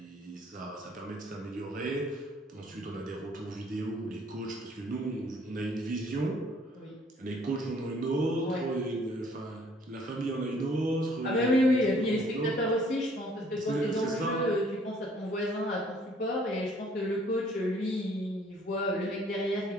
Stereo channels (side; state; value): both; normal; correlation 0.60